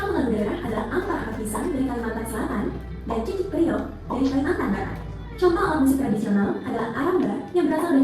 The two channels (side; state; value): both; identical; correlation 1.00